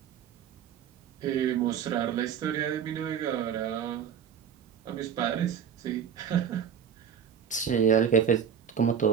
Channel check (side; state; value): left; quieter; 7.9 dB